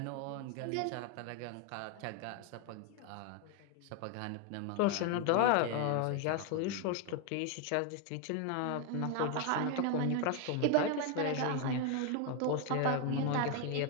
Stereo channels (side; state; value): both; different; correlation 0.01